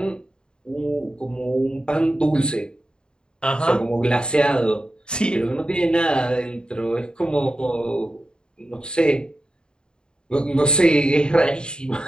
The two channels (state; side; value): late; right; 0.050 ms